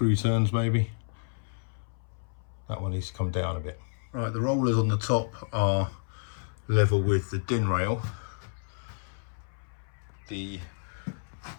turns maybe. That one needs to come down a bit. Right, the rollers on the top are level with the din rail. The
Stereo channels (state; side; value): silent; right; 58 dB below the other